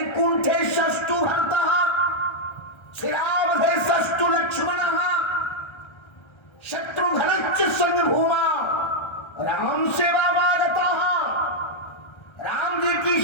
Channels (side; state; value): right; late; 1.3 ms